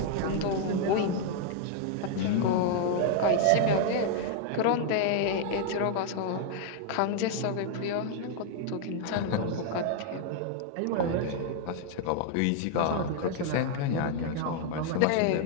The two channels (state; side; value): different; both; correlation 0.00